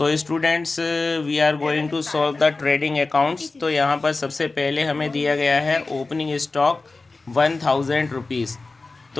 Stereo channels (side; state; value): right; quieter; 3.6 dB